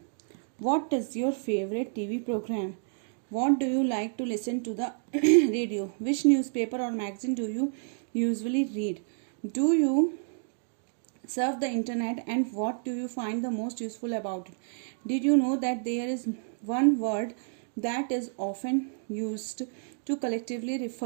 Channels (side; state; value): left; silent; 58 dB below the other